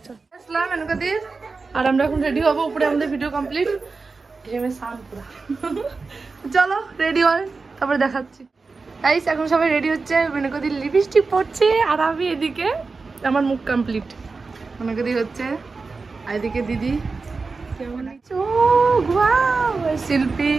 আসলাম এনকাদির, আর আমরা এখন রেডি হবো, উপরে আমাদের ভিডিও কমপ্লিট। চলো রেডি হয়, তারপরে দেখাচ্ছি। গাইস এখন সবাই রেডি হচ্ছে, মেনকাদির লিপস্টিক পড়ছে, আর আমি এদিকে আমার মুখ কমপ্লিট। মেনকাদি হচ্ছে, আর এদিকে দিদি,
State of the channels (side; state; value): left; quieter; 4.2 dB